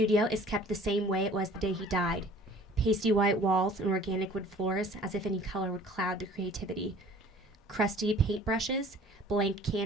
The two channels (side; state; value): both; normal; correlation 0.49